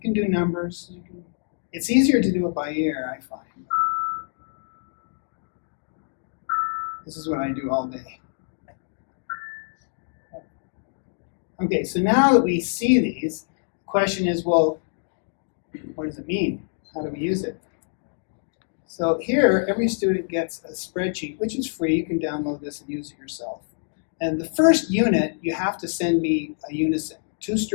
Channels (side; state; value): right; silent; digital silence